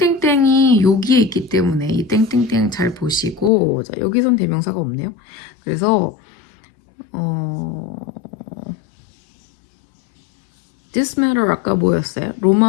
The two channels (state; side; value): drops out; right; at 3.5 s